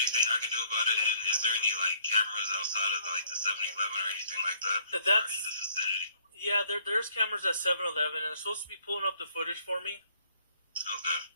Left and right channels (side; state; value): both; inverted; correlation -0.63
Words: I can do about it? And is there any cameras outside of the 7-Eleven or anything like that? That's in the vicinity. Yeah. There's cameras at 7-Eleven, and they're supposed to be pulling up the footage for me. Okay.